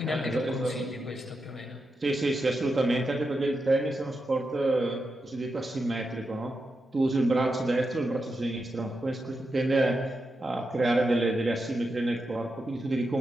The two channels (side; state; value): both; normal; correlation 0.87